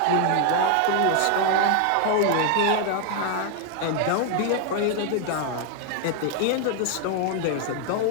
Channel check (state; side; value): different; both; correlation 0.00